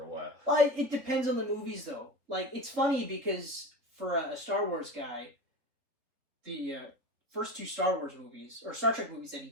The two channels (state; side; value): late; left; 4.0 ms